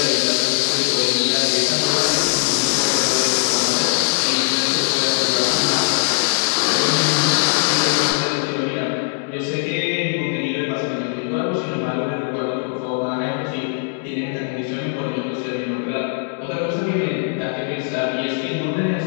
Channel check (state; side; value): silent; right; digital silence